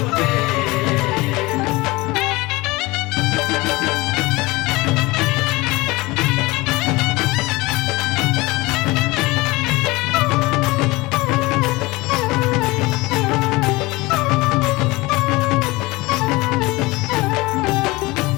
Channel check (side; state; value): right; quieter; 22.0 dB